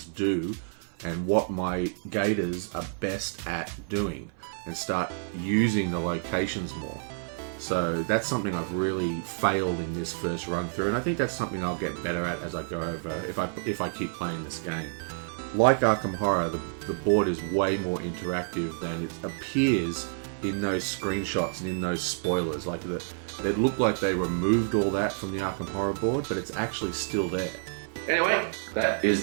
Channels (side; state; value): left; silent; 56 dB below the other